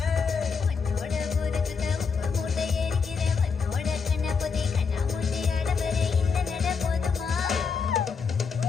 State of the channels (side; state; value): right; quieter; 5.5 dB